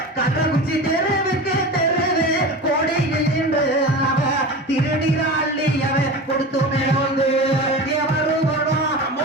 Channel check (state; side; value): normal; both; correlation 0.30